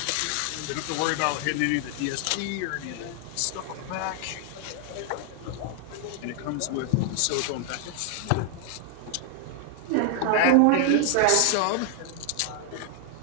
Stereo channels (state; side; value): different; both; correlation 0.00